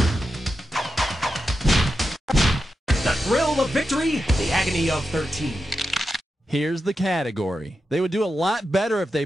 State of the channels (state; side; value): normal; both; correlation 0.89